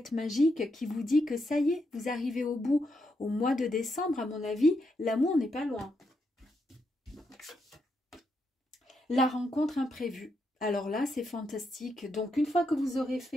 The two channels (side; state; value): both; normal; correlation 0.81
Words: magique qui vous dit que ça y est, vous arrivez au bout. Au mois de décembre, à mon avis, l'amour n'est pas loin. La rencontre imprévue. Alors là, c'est fantastique. Donc, une fois que vous aurez